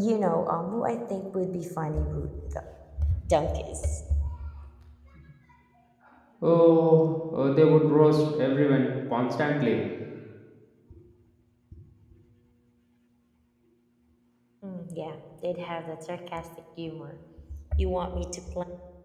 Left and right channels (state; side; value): identical; both; correlation 1.00